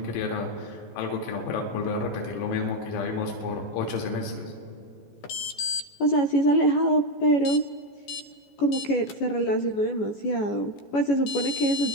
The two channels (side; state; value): right; late; 14 ms